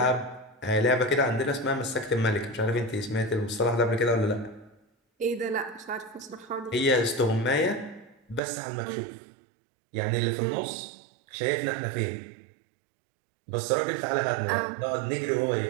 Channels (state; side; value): drops out; left; at 8.4 s